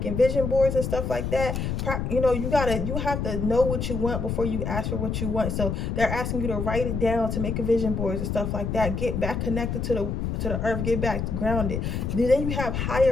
vision boards and stuff like that. You know, you have to know what you want before you ask for what you want. So they're asking you to write it down, to make a vision boards and stuff like that. Get back connected to the earth, get back grounded. Then you have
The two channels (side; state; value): left; noise; rumble, 2 dB below the sound